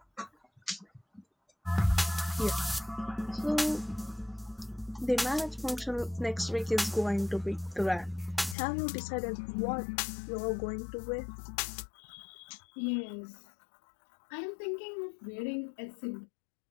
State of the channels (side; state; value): right; drops out; at 8.6 s